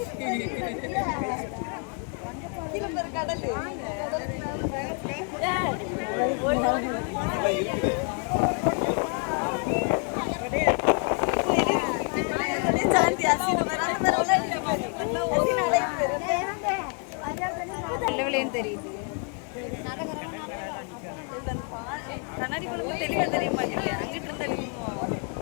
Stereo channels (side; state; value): right; quieter; 39.3 dB